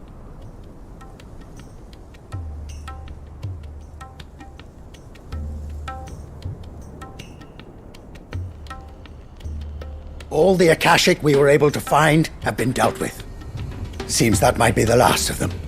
All the Akashic we were able to find have been dealt with. Seems that might be the last of them.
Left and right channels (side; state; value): both; identical; correlation 1.00